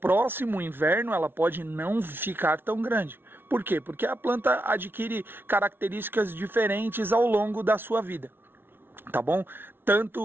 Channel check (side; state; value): left; late; 0.11 ms